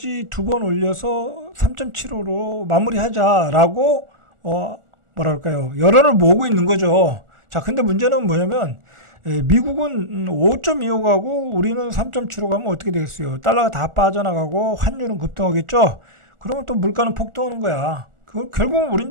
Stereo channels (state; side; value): late; left; 1.4 ms